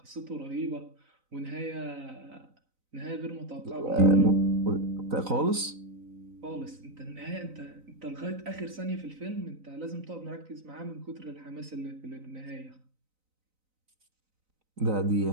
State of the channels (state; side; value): late; left; 3.9 ms